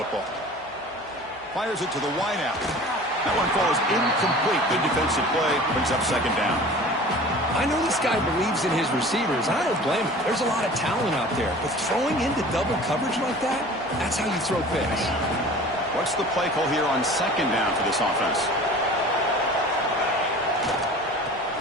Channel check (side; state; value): both; normal; correlation 0.42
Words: Fires it to the wideout. That one falls incomplete. Good defensive play. Brings up second down. I know this guy believes in his receivers, and I don't blame him. There's a lot of talent out there. But throwing into double coverage like that, that's how you throw picks. What's the play call here on second down for this offense?